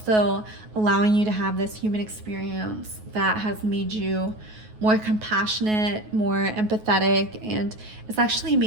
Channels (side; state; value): left; late; 9.4 ms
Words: allowing you to have this human experience that has made you more compassionate, more empathetic, and it's actually